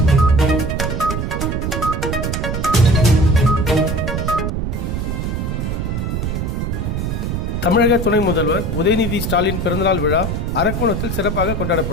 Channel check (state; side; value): noise; right; rumble, 2 dB below the sound